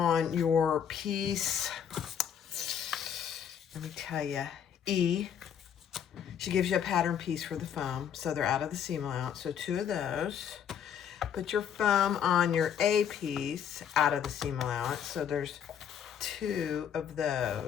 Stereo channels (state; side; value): quieter; right; 8.5 dB